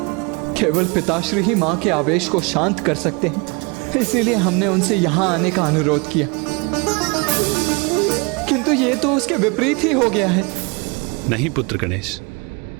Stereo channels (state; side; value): quieter; left; 29.8 dB